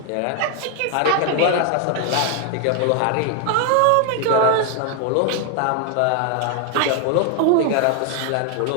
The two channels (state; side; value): different; both; correlation 0.00